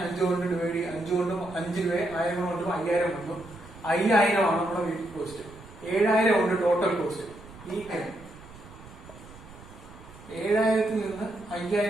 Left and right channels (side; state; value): right; noise; rumble, 19 dB below the sound